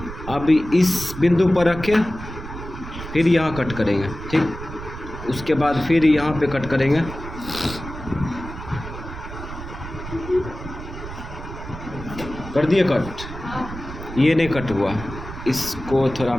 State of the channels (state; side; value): noise; right; rumble, 11 dB below the sound